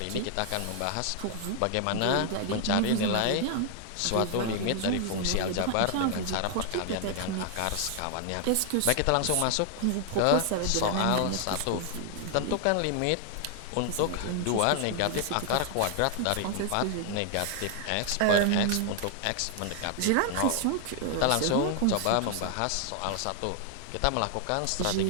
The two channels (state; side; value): different; both; correlation 0.00